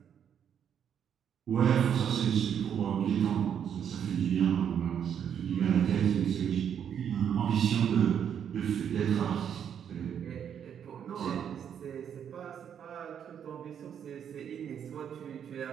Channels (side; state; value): left; quieter; 8.5 dB